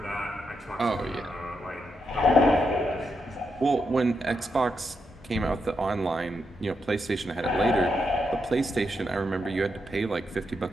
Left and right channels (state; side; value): normal; both; correlation 0.83